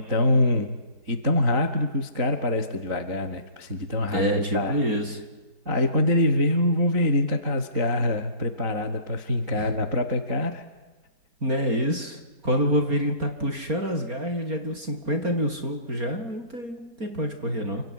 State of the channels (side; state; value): left; late; 4.3 ms